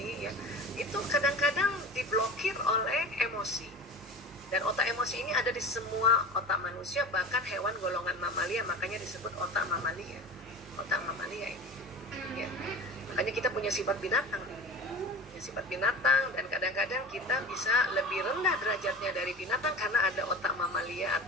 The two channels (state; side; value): normal; both; correlation 0.35